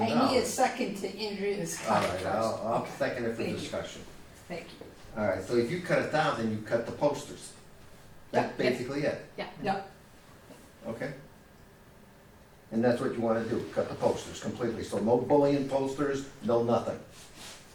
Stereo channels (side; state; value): both; identical; correlation 1.00